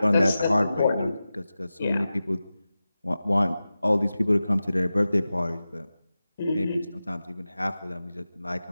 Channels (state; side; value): inverted; both; correlation -0.94